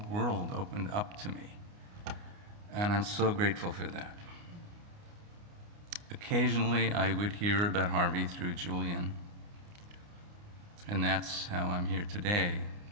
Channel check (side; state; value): left; late; 29 ms